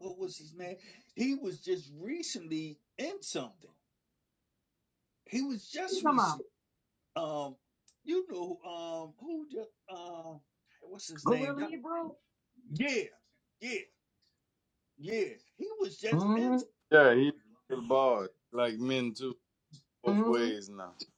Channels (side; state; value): both; identical; correlation 1.00